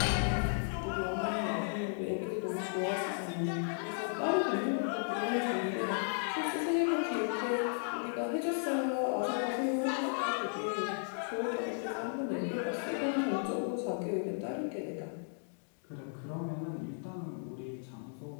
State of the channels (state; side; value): silent; right; digital silence